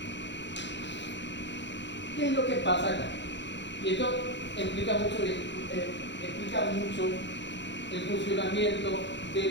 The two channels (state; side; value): late; right; 0.52 ms